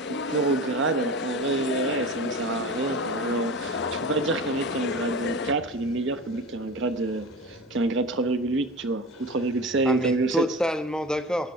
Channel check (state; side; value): normal; both; correlation 0.32